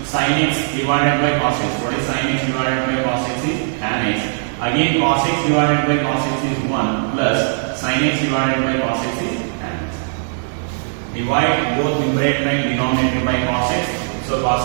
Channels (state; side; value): silent; left; 66 dB below the other